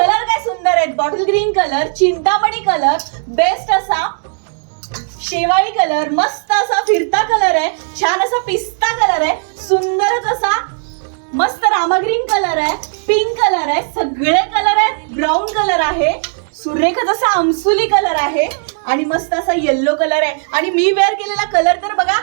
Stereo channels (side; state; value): left; silent; digital silence